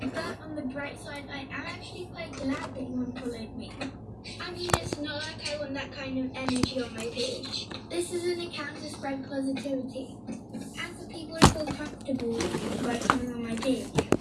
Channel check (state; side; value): identical; both; correlation 1.00